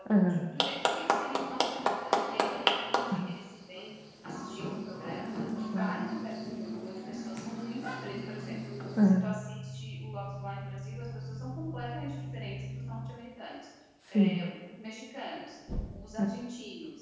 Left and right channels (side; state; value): both; identical; correlation 1.00